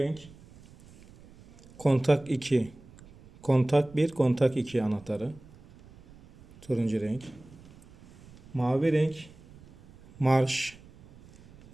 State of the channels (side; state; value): right; noise; rumble, 23 dB below the sound